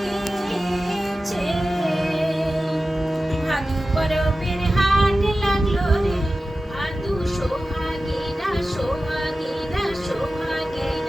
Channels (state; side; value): normal; both; correlation 0.94